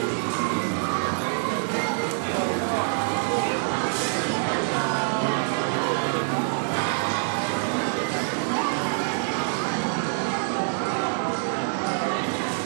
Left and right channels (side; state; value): left; silent; 61 dB below the other